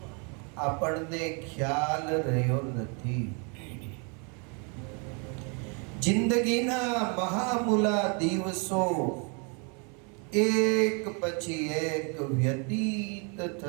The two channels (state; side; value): quieter; left; 35.5 dB